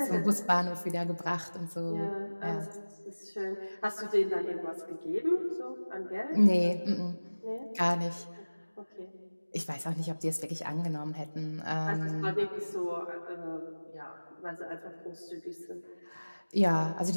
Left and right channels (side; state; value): both; inverted; correlation -1.00